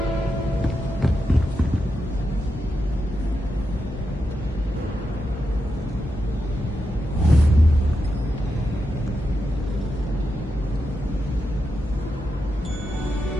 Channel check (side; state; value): both; normal; correlation 0.87